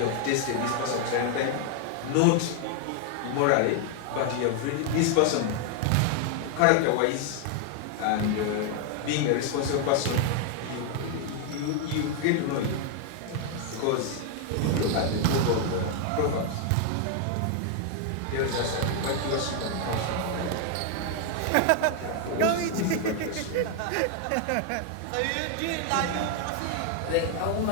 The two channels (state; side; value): different; both; correlation 0.00